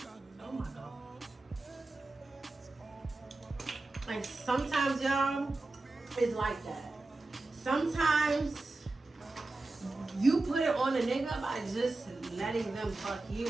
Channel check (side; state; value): left; quieter; 3.1 dB